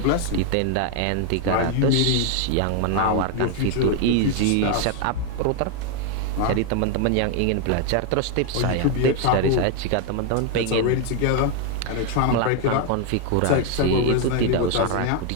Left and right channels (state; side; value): different; both; correlation 0.00